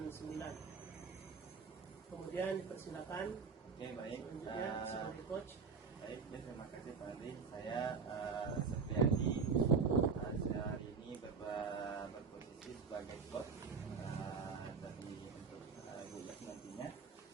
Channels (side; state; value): left; quieter; 5.2 dB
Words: 9. Kemudian dipersilakan Oke, baik. selanjutnya sebagai coach. Baik, ya, terima kasih Pak Andri. Saya Septiadi, saya hari ini berposisi sebagai coach dari untuk Guyas nantinya.